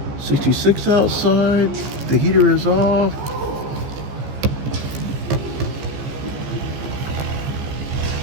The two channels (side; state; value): left; late; 14 ms